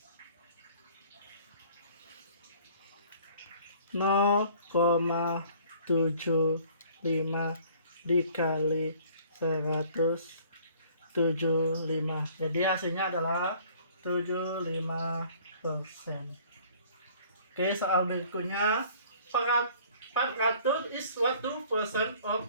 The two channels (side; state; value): both; inverted; correlation -0.54